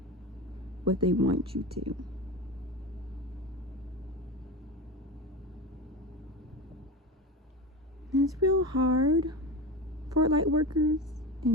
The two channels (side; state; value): both; normal; correlation 0.25